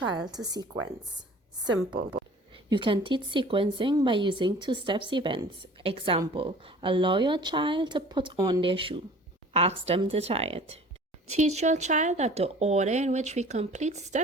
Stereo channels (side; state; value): both; normal; correlation 0.47